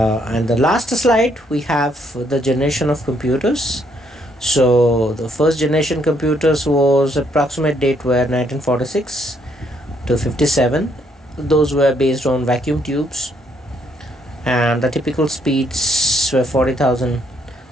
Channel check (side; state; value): both; normal; correlation 0.71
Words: last slide, we have the generation of computers. So the first generation computers was approximate date were 1946 to 57. Those were based on vacuum tubes, and the typical speeds were 40,000